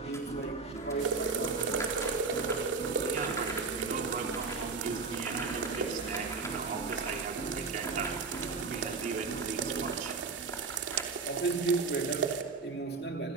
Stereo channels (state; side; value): quieter; left; 4.5 dB